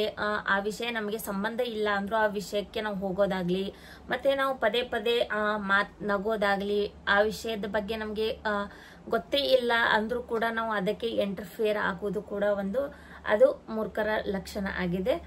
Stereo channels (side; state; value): both; identical; correlation 1.00